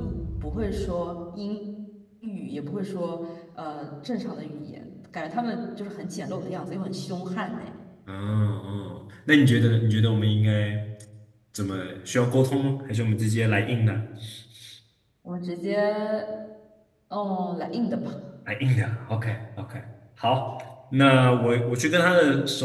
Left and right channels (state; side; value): identical; both; correlation 1.00